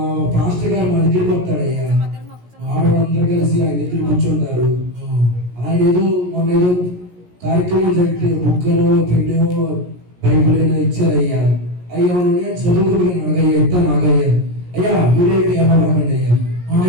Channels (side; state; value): left; late; 17 ms